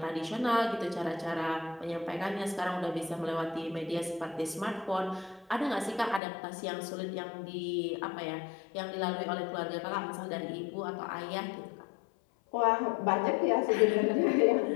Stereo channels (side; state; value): right; drops out; at 6.2 s